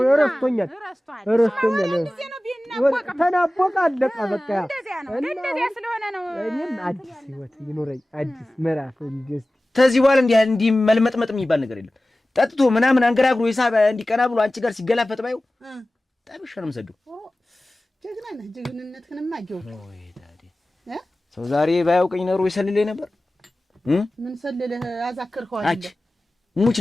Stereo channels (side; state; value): both; normal; correlation 0.97